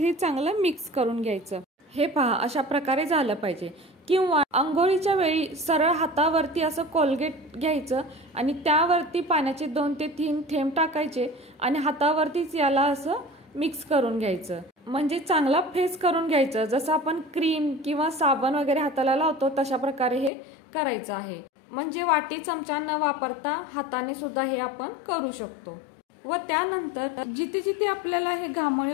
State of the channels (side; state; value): right; drops out; at 20.3 s